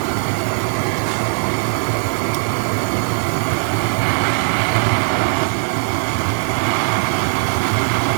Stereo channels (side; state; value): left; silent; digital silence